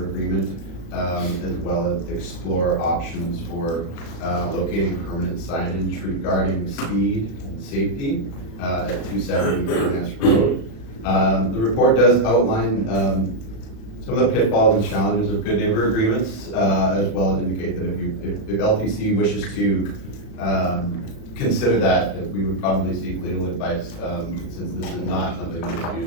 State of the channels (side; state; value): right; late; 36 ms